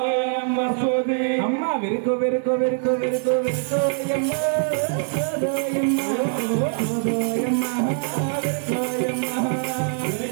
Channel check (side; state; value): left; silent; 61 dB below the other